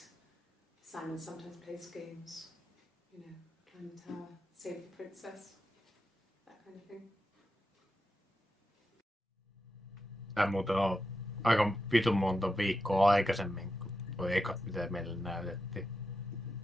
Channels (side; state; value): both; normal; correlation 0.88